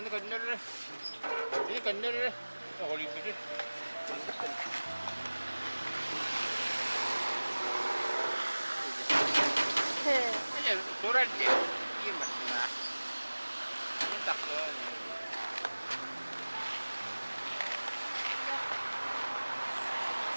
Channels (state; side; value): inverted; both; correlation -1.00